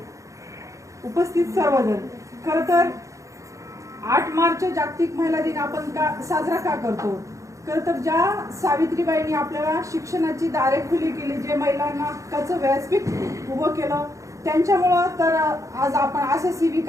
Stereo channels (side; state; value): left; late; 0.15 ms